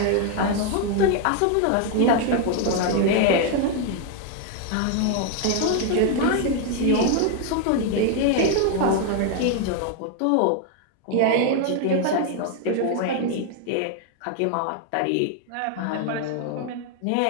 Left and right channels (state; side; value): different; both; correlation 0.01